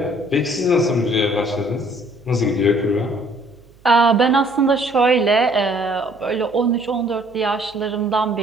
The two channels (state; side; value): noise; right; hum, 28 dB below the sound